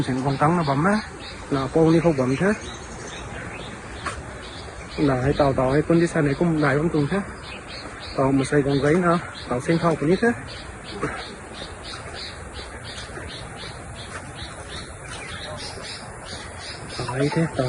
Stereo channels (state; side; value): identical; both; correlation 1.00